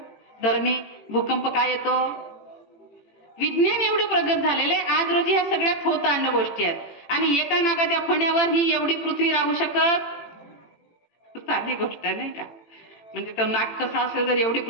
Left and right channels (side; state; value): right; late; 18 ms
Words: धरणी? भूकंप काय येतो? विज्ञान एवढे प्रगत झालेले आज रोजी ह्या सगळ्यात होत आणण्या गोष्टी आहेत, आणि एका नागाच्या फण्यावर ही एवढी पृथ्वी राहू शकत? साधी गोष्ट नाही का? म्हणजे तो नाग कसा असेल, जर एवढी